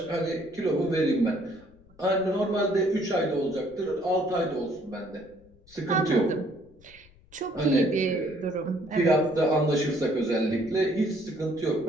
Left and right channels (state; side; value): noise; left; rumble, 27 dB below the sound